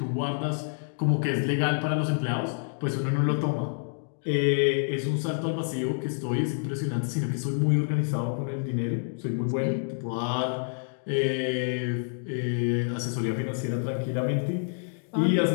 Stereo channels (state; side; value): silent; right; digital silence